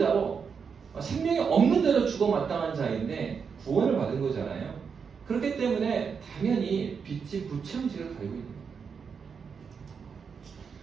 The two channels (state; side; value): quieter; left; 6.1 dB